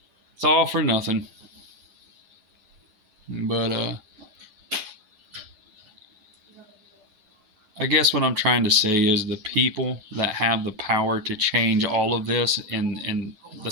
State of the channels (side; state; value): left; late; 9.4 ms